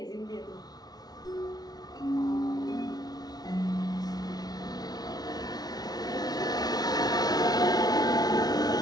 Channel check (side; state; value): right; late; 0.19 ms